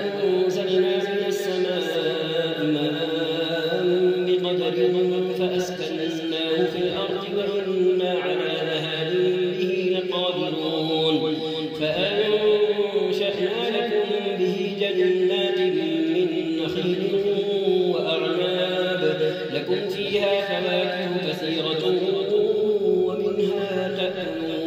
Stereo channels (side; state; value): both; identical; correlation 1.00